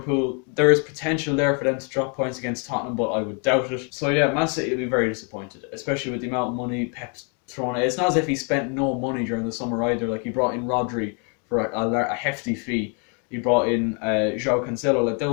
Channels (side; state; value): right; quieter; 38.0 dB